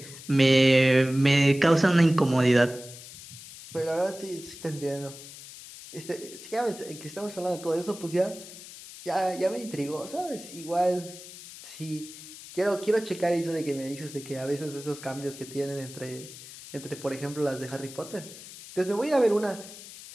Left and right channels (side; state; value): left; noise; hiss, 15 dB below the sound